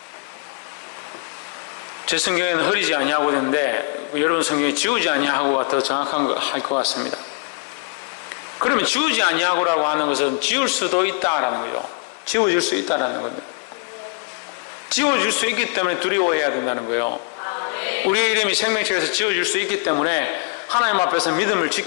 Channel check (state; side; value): quieter; right; 36.3 dB